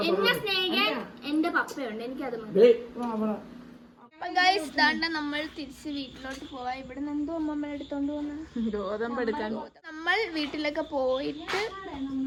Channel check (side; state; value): both; identical; correlation 1.00